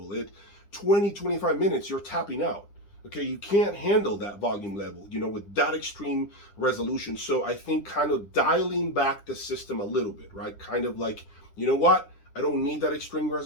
20, 25 minutes, you're tapping out. Okay, you can't handle that volume level, you know, with that extreme resolution. So I think kind of dialing back the system a little bit, right? Kind of like, you know what? I don't need that extreme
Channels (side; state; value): right; late; 10 ms